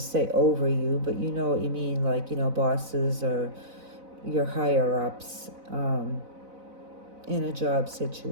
say over you, but you know what you mean, like, bosses or your higher ups in a job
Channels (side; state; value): left; late; 4.0 ms